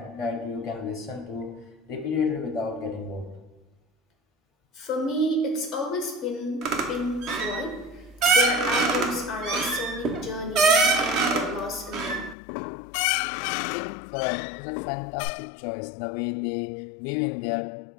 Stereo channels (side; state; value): right; drops out; at 12.4 s